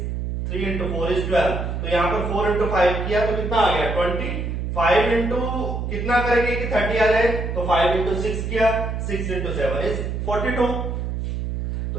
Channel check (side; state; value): right; noise; hum, 3 dB below the sound